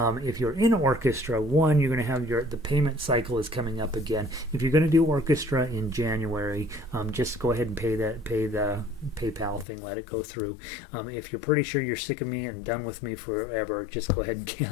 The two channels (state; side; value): drops out; right; at 9.7 s